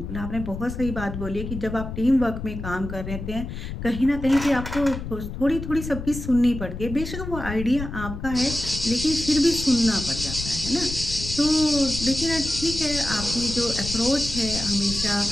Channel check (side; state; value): left; noise; rumble, 8 dB below the sound